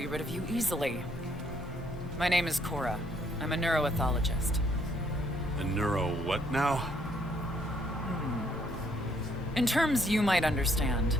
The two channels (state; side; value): normal; both; correlation 0.68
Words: rid of you easily. My name is Cora. I'm a neuroethologist. A neuro what now? In terms you might understand,